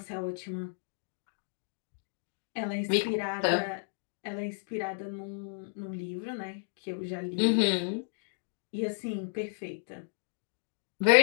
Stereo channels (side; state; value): right; silent; digital silence